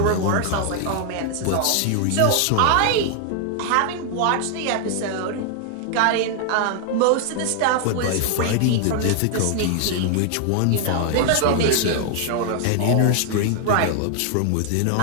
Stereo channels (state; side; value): different; both; correlation 0.00